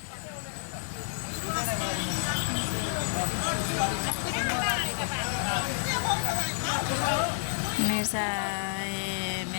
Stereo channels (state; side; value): silent; right; digital silence